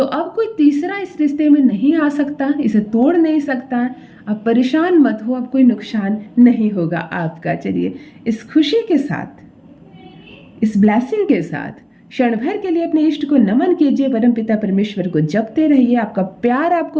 अब कोई तीसरा इस रिश्ते में नहीं आ सकता, इसे तोड़ नहीं सकता। आप परेशान मत हो, अब कोई नुकसान नहीं होगा आपका। चलिए इस खुशी के साथ, इस ब्लेसिंग के साथ क्षण भर के लिए अपने इष्ट को नमन कीजिए, परमपिता परमेश्वर को जपते रहिए, आपका प्यार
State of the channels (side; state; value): both; identical; correlation 1.00